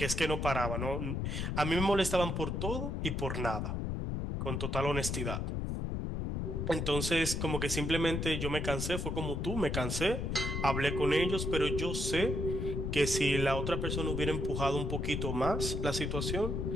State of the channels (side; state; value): left; noise; rumble, 1 dB below the sound